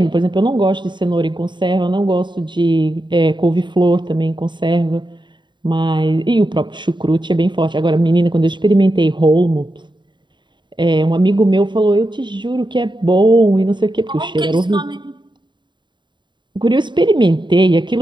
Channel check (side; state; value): left; late; 0.22 ms